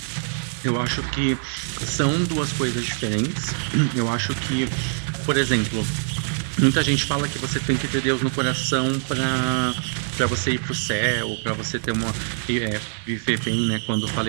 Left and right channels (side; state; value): left; silent; digital silence